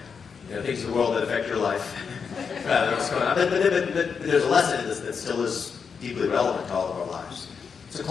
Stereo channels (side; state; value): right; quieter; 6.1 dB